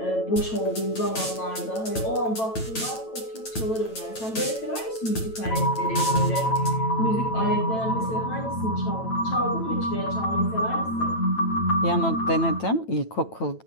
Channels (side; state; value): right; late; 9.0 ms